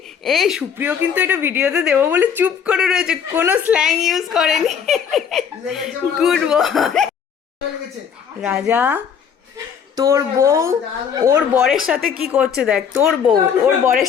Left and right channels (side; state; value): right; quieter; 7.5 dB